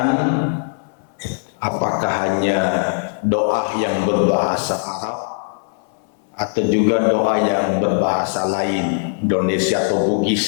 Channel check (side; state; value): right; silent; 60 dB below the other